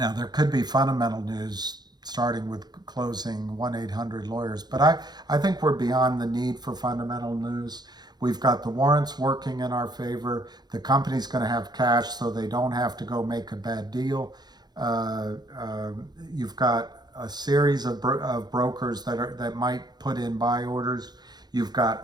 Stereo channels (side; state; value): left; late; 0.20 ms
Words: there could be fundamental news starting with closing 1-800-Lawyers, but I think we're beyond the need for fundamental news. We've got the warrants working in our favor. The company's going to have cash, so they don't have to go make a bad deal. You've got a series of brokers that might put in buy orders. You've